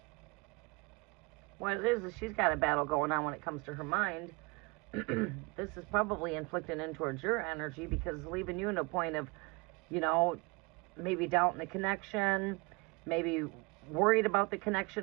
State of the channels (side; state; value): left; quieter; 28.2 dB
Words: What it is she's got a battle going on when it comes to her mind. This is probably inflicting in towards your energy because it's leaving you in a point of, you know, maybe doubting the connection, maybe worried about the